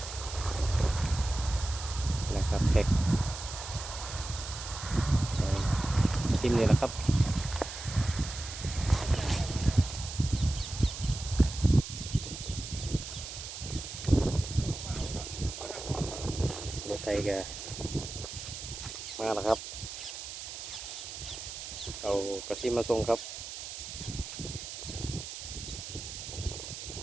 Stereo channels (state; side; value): noise; right; hiss, 9 dB below the sound